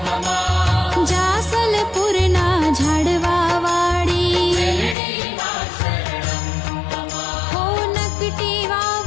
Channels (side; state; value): right; drops out; at 5.0 s